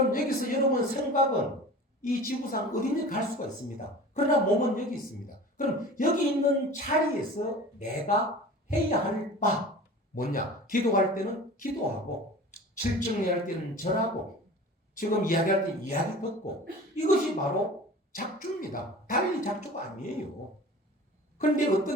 여기서 여러분 생각은 이 지구상 어디든 갈 수가 있습니다. 그러나 몸은 여기 있습니다. 그럼 여기 있는 자리에서 내가 해야 할 바 뭐냐? 기도할 때는 기도하고 실증할 때는 절하고 지금 이야기할 때 이야기 듣고 이것이 바로 작주입니다. 달리 작주가 아니에요. 그런데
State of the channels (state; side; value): normal; both; correlation 0.39